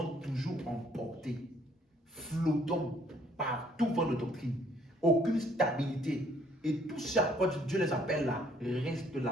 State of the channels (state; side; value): normal; both; correlation 0.64